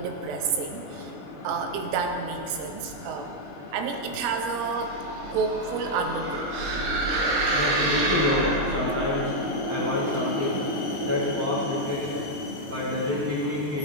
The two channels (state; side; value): late; left; 21 ms